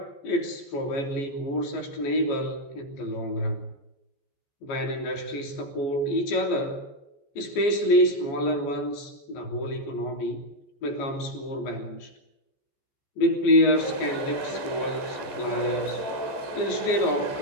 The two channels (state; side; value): late; right; 14 ms